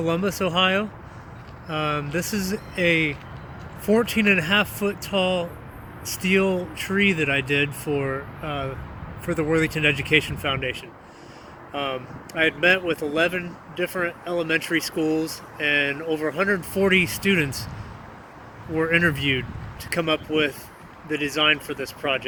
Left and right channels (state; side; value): identical; both; correlation 1.00